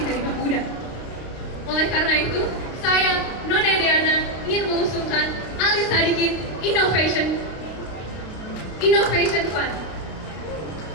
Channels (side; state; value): right; late; 32 ms